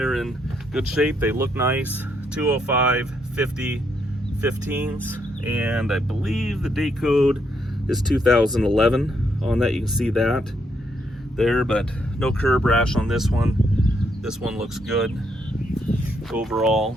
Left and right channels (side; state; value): both; normal; correlation 0.76